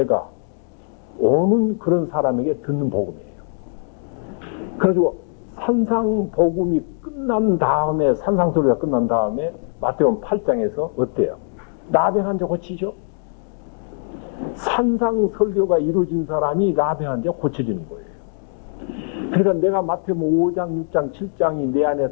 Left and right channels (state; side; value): silent; right; 65 dB below the other